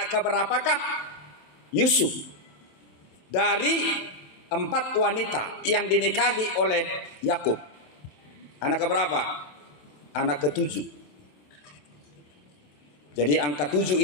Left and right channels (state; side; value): late; right; 27 ms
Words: keberapakah Yusuf dari 4 wanita yang dinikahi oleh Yakub? Anak keberapa? Anak ke-7. Jadi angka 7